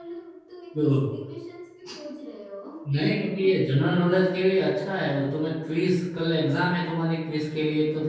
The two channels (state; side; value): identical; both; correlation 1.00